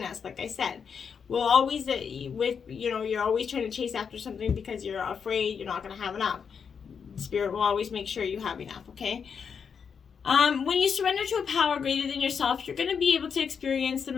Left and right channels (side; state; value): right; quieter; 6.6 dB